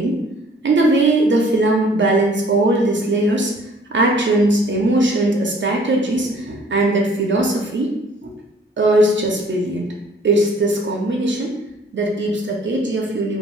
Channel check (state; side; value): normal; both; correlation 0.56